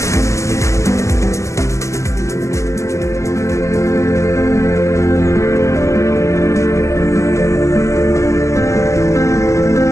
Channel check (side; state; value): right; late; 0.14 ms